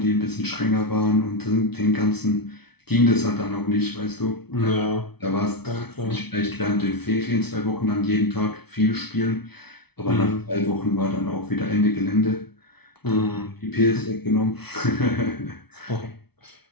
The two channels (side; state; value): right; late; 0.98 ms